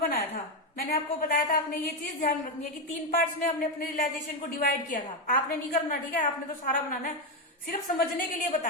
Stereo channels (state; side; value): normal; both; correlation 0.08